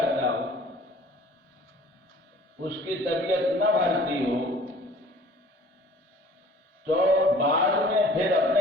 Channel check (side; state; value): both; normal; correlation 0.50